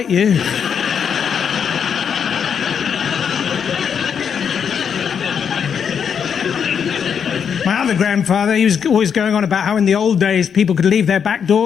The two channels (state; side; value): quieter; right; 7.3 dB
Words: you." My other grandfather, he was always going on about how in the old days people could leave their back